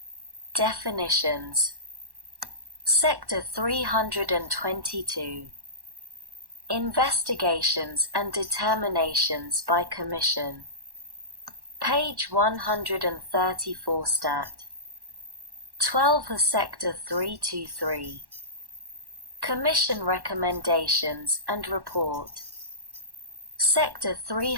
Definitions. Sector 322. Investigations and determinations by commission. Page 134. Stat. 12. Sector 323. Commission recommendations and report. Sector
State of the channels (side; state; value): left; late; 1.1 ms